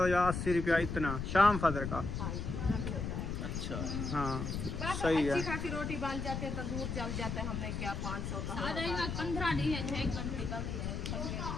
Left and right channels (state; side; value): noise; left; rumble, 3 dB below the sound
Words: या 80 रुपया इतना शाम फजर का। हाँ, इतना भी होता है। अच्छा, हाँ बस सही है। अच्छी खासी रोटी बन जाती है, तंदूर जल जाता है। हमने क्या 500 का आ जाएगा 15 दिन है, 6 घंटे कमी है।